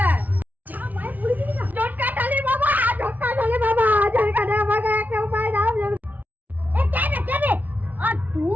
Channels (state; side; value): late; left; 0.077 ms